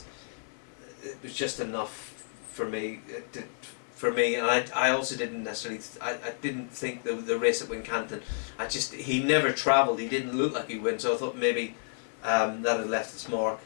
It was just enough for me. And I also didn't necessarily. I didn't think the race at Wincanton. He never travelled. He didn't look like he win. So I thought maybe that had left its mark.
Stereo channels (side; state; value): right; silent; 58 dB below the other